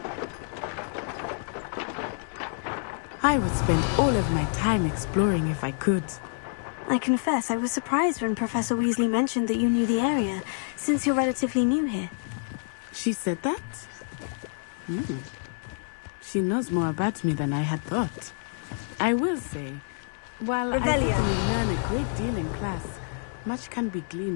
I would spend all of my time exploring if I could. I confess I was surprised when Professor Weasley mentioned that you knew the area, since you're relatively new here. She said that? She knows more about me than I had thought. I will say, while I Revelio. certainly learn a great deal in class, much can be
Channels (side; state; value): right; silent; digital silence